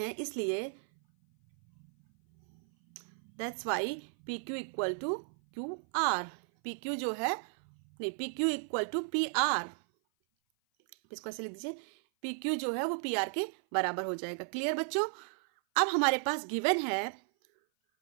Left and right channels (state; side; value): silent; left; 55 dB below the other